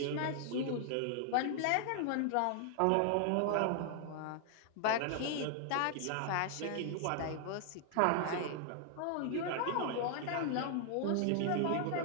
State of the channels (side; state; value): both; different; correlation 0.00